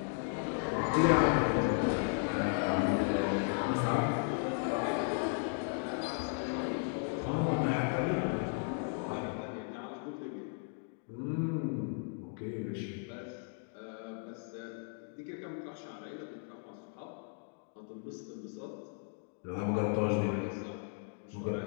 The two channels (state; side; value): silent; right; 54 dB below the other